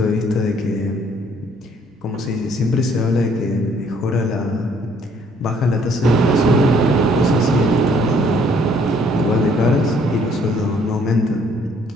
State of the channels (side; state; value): both; normal; correlation 0.63